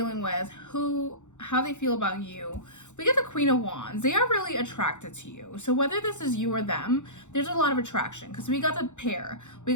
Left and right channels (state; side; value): late; right; 0.84 ms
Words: with, how they feel about you, we get the Queen of Wands. They are really attracted to you. So whether this is you or them, there's a lot of attraction, because we got the pair. We